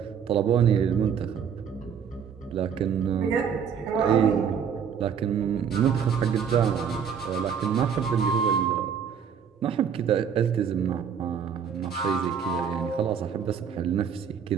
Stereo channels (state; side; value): quieter; left; 7.4 dB